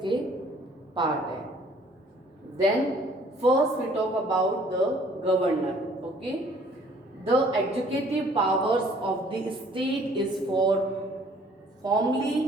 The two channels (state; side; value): normal; both; correlation 0.57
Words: पार्ट है. Then first we talk about the governor. Okay, the executive powers of the state is for formally